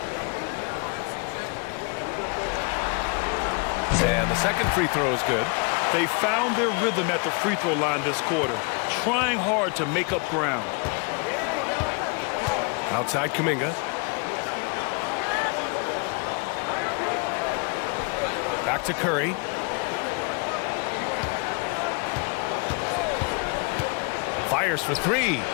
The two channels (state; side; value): quieter; right; 34.1 dB